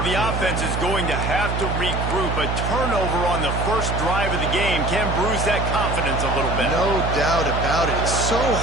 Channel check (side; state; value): right; noise; hum, 2 dB below the sound